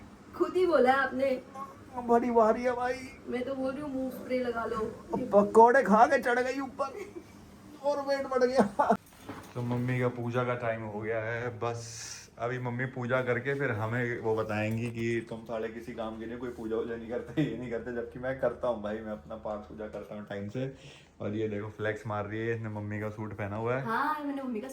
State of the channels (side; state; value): both; identical; correlation 1.00